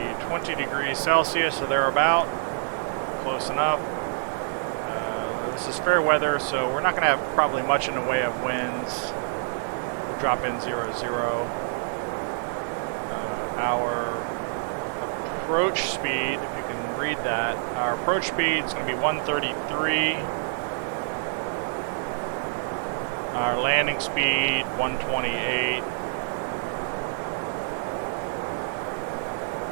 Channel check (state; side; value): silent; left; digital silence